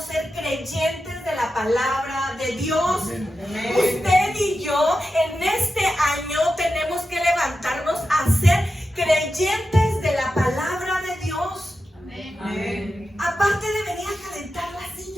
ser creyentes de la palabra de Dios. Amén. Usted y yo en este año tenemos que levantarnos a ser creyentes de la palabra de Dios. Amén. Amén. Aparte de venir a calentar la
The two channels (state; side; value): normal; both; correlation 0.90